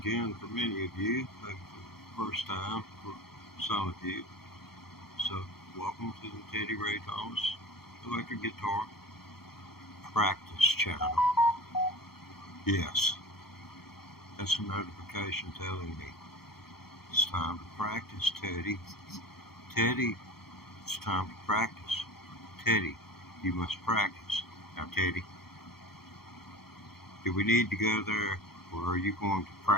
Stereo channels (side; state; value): right; late; 0.95 ms